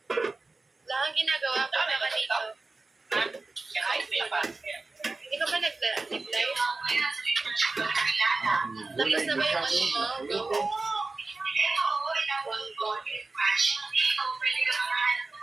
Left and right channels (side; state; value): left; quieter; 3.5 dB